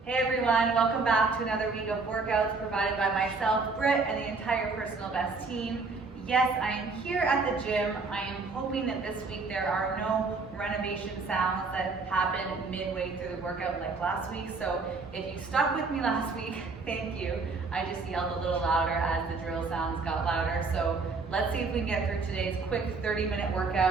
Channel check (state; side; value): quieter; left; 4.1 dB